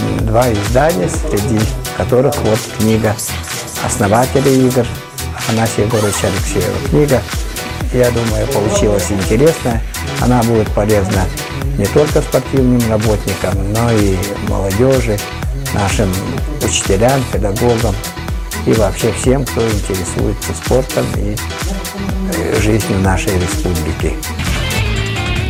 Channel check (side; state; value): both; identical; correlation 1.00